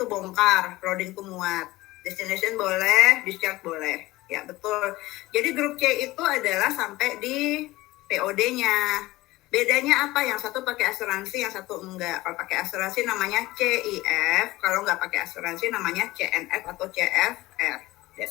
bongkar, loading itu muat. Destination boleh, discharge boleh. Ya betul. Jadi grup C itu adalah sampai di POD-nya. Bedanya apa? Yang satu pakai asuransi, yang satu enggak. Kalau pakai asuransi namanya CIF, kalau nggak pakai asuransi namanya CNF atau CFR.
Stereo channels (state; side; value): quieter; right; 18.7 dB